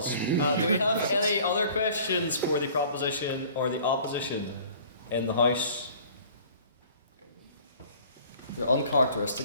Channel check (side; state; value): both; inverted; correlation -0.50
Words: Do we have any other questions for the proposition or the opposition in the House? You're